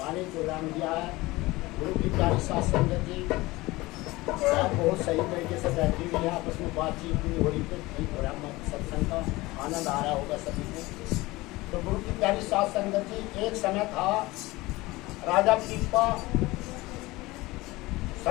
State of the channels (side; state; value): right; quieter; 20.6 dB